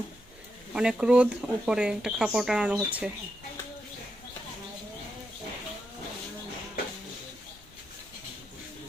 অনেক রোদ উপরে একটা কাপড় টানানো হচ্ছে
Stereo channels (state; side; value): normal; both; correlation 0.84